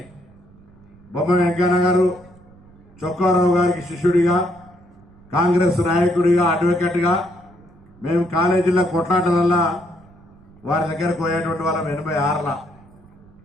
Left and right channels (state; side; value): noise; right; rumble, 26 dB below the sound